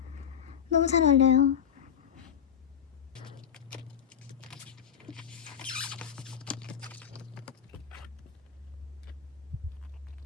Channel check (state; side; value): quieter; right; 8.5 dB